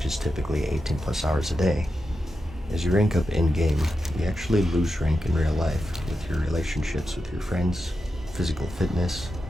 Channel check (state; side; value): normal; both; correlation 0.89